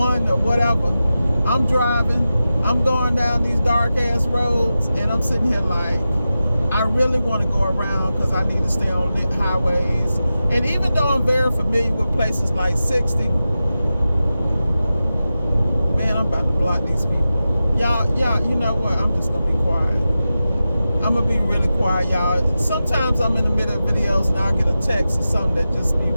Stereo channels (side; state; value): both; inverted; correlation -0.93